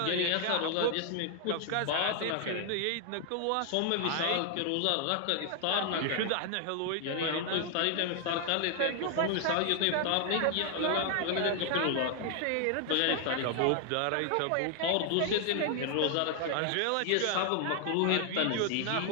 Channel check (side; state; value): both; different; correlation 0.00